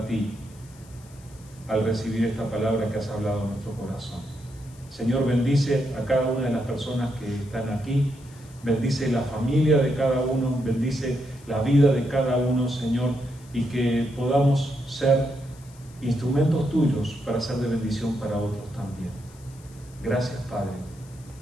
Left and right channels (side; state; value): left; noise; hiss, 25 dB below the sound